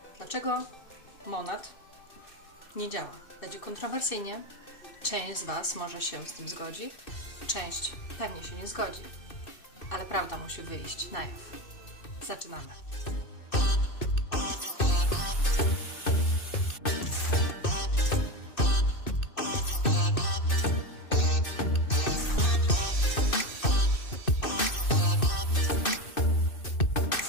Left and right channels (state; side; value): late; right; 2.6 ms